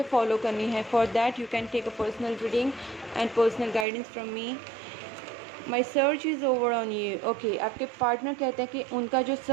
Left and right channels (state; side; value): drops out; left; at 3.9 s